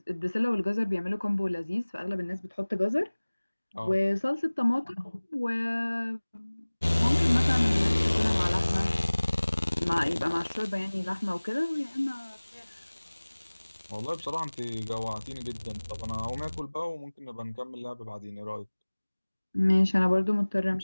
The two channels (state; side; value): inverted; both; correlation -1.00